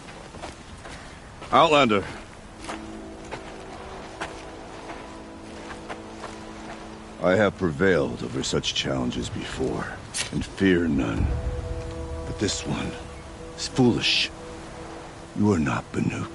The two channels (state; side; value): identical; both; correlation 1.00